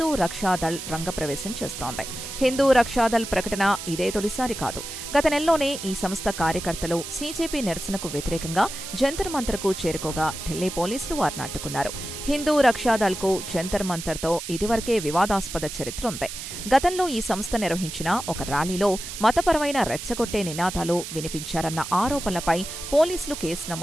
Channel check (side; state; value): right; noise; hiss, 9 dB below the sound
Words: రక్షాదళ్ రంగప్రవేశం చేస్తోంది. హిందూ రక్షాదళ్ ప్రకటన ఇదే తొలిసారి కాదు. గత నెలలోనే ఈ సంస్థ కార్యకర్తలు సీజేపీ నిరసనకు వ్యతిరేకంగా జంతర్ మంతర్కు చేరుకోగా ఢిల్లీ పోలీసులు వారిని అడ్డుకున్నారు. హిందూ రక్షాదళ్కు జంతర్ మంతర్తో ఇదివరకే వివాదాస్పద చరిత్ర ఉంది. గతంలో ఈ సంస్థ నిర్వహించిన ఒక ర్యాలీలో మతపరమైన రెచ్చగొట్టే నినాదాలు వినిపించారన్న ఆరోపణలపై పోలీసులు కేసు